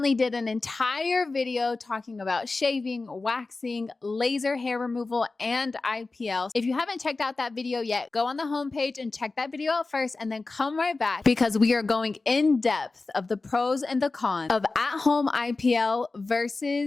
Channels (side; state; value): right; quieter; 3.6 dB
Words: did an entire video talking about shaving, waxing, laser hair removal, and IPL. If you haven't checked out that video yet, go on the homepage and check that video out first and then come right back because we are going in depth of the pros and the cons of at-home IPL